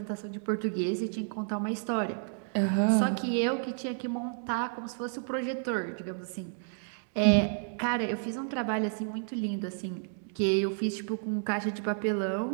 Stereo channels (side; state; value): left; silent; digital silence